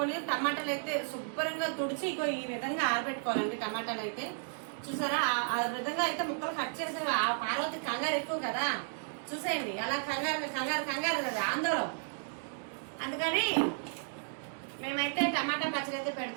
టమాటాలు అయితే శుభ్రంగా తుడిచి ఈ విధంగా ఆరబెట్టుకోవాలండి. టమాటాలు అయితే చూసారా, ఆ విధంగా అయితే ముక్కలు కట్ చేసే ఆ పార్వతి కంగారు ఎక్కువ కదా, చూసేయండి. అలా కంగారు కంగారు కంగారు కదా ఆందోళన. అందుకని మేమైతే టమాటా పచ్చడి అయితే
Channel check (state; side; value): silent; left; digital silence